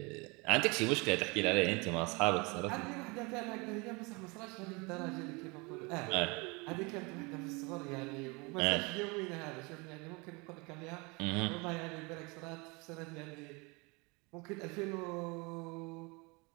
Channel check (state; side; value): quieter; left; 27.9 dB